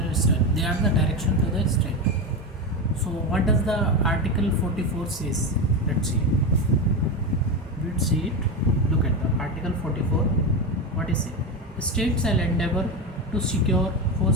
state. They are the direction to the state. So what does the Article 44 says? Let's see. Let's see it. Look at the Article 44. What is it? The state shall endeavor to secure for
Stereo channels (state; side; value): normal; both; correlation 0.17